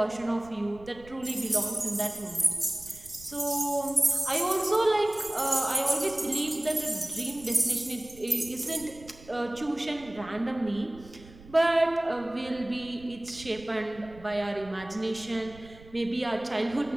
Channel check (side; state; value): right; noise; rumble, 20 dB below the sound